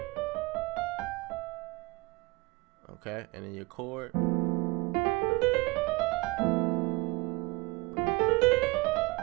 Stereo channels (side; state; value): left; quieter; 24.6 dB